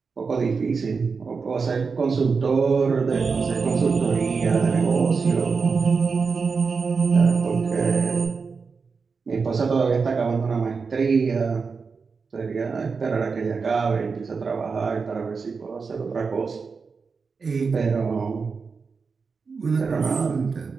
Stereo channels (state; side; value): quieter; left; 5.0 dB